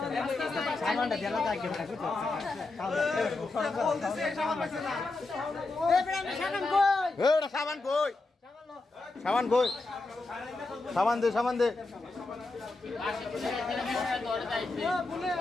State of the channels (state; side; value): quieter; right; 3.3 dB